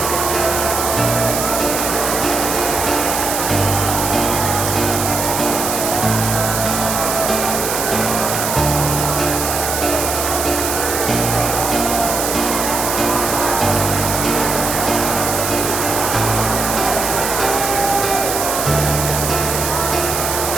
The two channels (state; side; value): noise; right; hiss, 2 dB below the sound